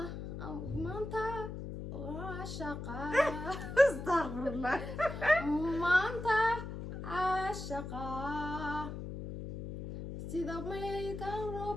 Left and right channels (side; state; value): left; noise; hum, 7 dB below the sound